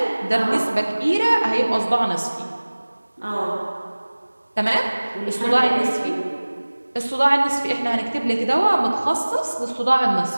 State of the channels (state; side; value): inverted; both; correlation -1.00